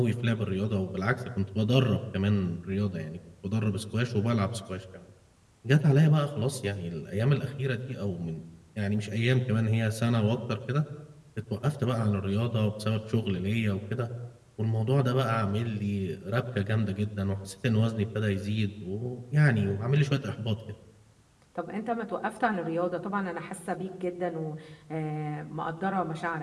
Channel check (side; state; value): both; identical; correlation 1.00